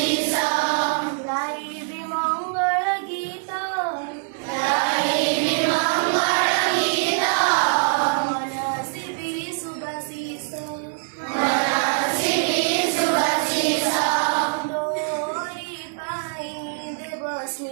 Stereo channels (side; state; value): left; silent; digital silence